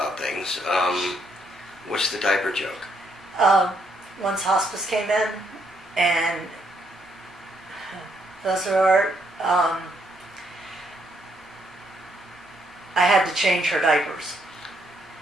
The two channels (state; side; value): normal; both; correlation 0.74